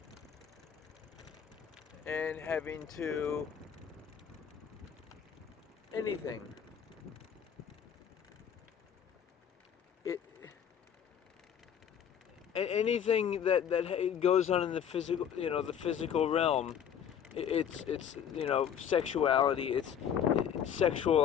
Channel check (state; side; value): quieter; right; 8.6 dB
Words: and having to anything. Anything that goes on in the physical realm, it's sexuality, it's